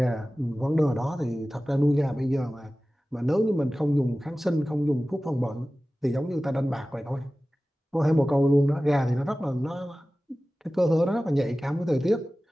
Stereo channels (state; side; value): normal; both; correlation 0.96